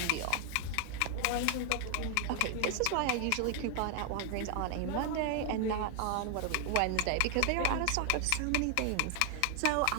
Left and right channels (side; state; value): both; different; correlation 0.00